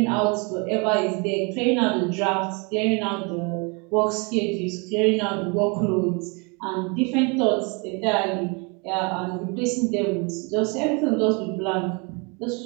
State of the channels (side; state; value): left; quieter; 31.5 dB